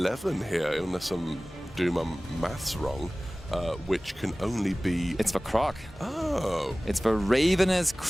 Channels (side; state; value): both; normal; correlation 0.98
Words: here, unless I'm doing my maths wrong. Which can only be... It's the Croc. Oh. It's the Ravenous